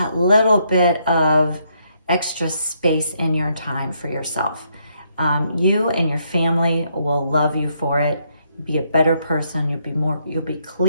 little bit of extra space in your time for yourself? You and your family will love you for it. Be a better person. You'll be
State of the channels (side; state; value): both; inverted; correlation -0.74